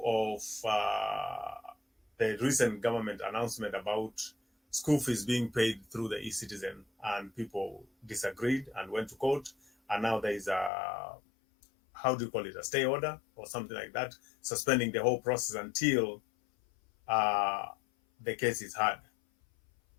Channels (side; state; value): right; drops out; at 10.7 s